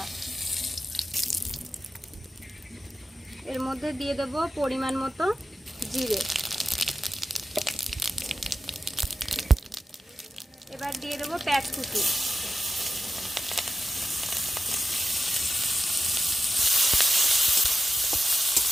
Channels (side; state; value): both; normal; correlation 0.91